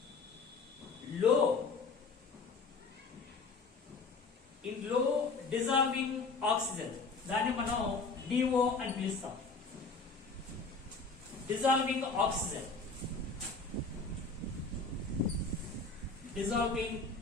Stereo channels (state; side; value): quieter; right; 4.0 dB